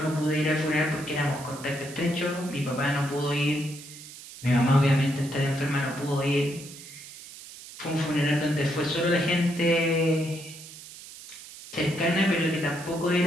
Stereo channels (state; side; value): noise; right; hiss, 16 dB below the sound